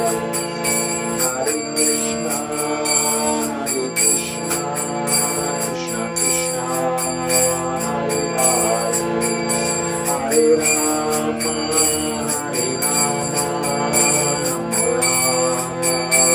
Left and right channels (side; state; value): both; identical; correlation 1.00